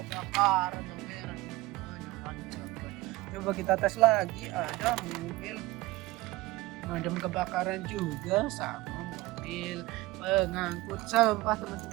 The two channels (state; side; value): quieter; left; 19.3 dB